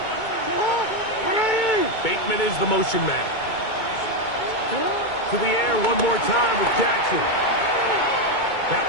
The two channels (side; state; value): right; late; 2.2 ms